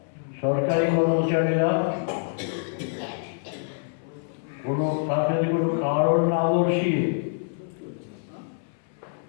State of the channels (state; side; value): silent; right; 61 dB below the other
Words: সরকারি কর্মচারীরা কোনো কারণ না দর্শিয়ে